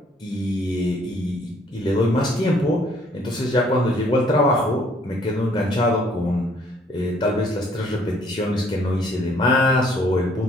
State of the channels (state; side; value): normal; both; correlation 0.62